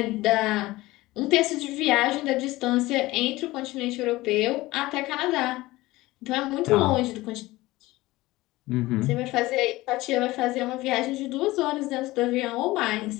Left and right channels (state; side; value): quieter; right; 19.0 dB